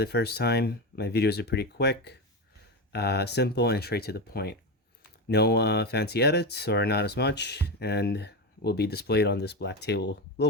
first time, my videos are pretty quick, simple, and straight to the point. No fancy edits or not as much, and will be displayed on this little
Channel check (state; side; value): normal; both; correlation 0.17